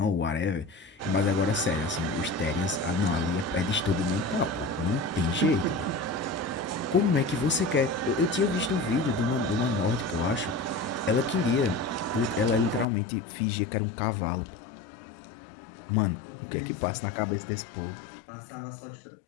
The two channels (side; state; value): right; drops out; at 12.9 s